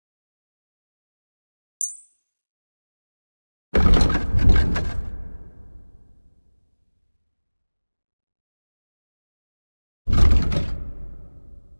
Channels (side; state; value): both; inverted; correlation -1.00